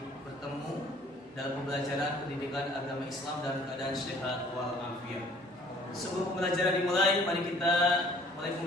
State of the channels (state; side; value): normal; both; correlation 0.55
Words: bertemu dalam pembelajaran pendidikan agama Islam dalam keadaan sehat walafiat. Sebelum pembelajaran dimulai, mari kita mulai